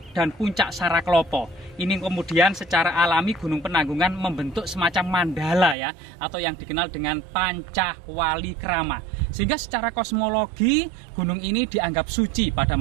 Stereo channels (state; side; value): drops out; left; at 5.8 s